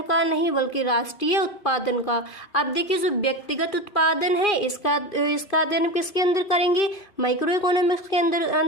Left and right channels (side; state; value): right; late; 2.4 ms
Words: का नहीं बल्कि राष्ट्रीय उत्पादन का। अब देखिए जो व्यक्तिगत उत्पादन है इसका अध्ययन किसके अंदर करेंगे, माइक्रो इकोनॉमिक्स के